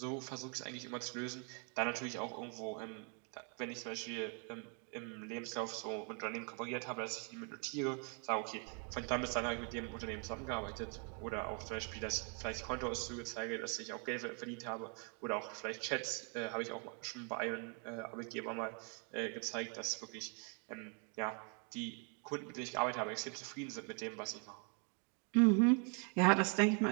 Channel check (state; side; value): quieter; left; 39.0 dB